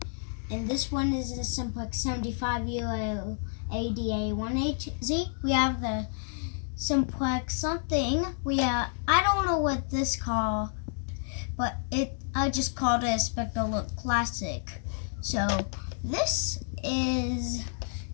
and this one is the Simplex 75 Euro ADA 1HZ. We have the Simplex something. I don't know what this called, but I just called it a Spectre Look Classic. So this is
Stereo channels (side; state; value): right; silent; digital silence